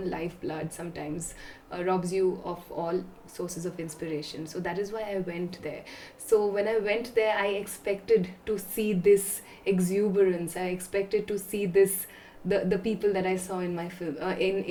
lifeblood sometimes, robs you of all sources of inspiration. So that is why I went there. So when I went there, I expected to see this exuberance. I expected to see this, the people that I saw in my film,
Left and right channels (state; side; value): identical; both; correlation 1.00